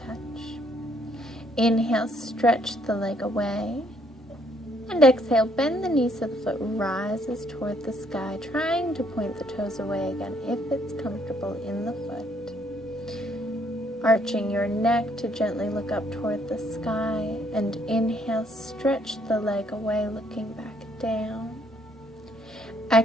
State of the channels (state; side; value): normal; both; correlation 0.68